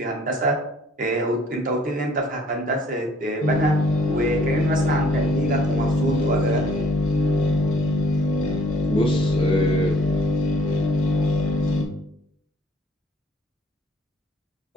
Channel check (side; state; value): both; normal; correlation 0.59